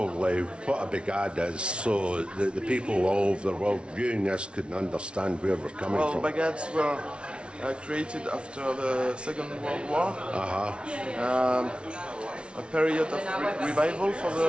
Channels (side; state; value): left; late; 0.058 ms